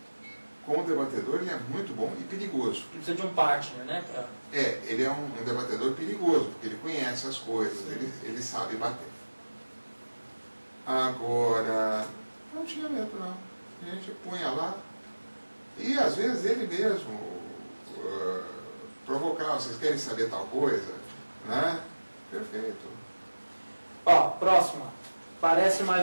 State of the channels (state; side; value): inverted; both; correlation -1.00